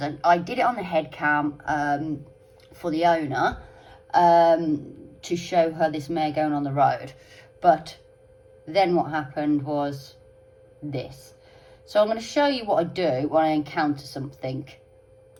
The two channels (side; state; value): both; identical; correlation 1.00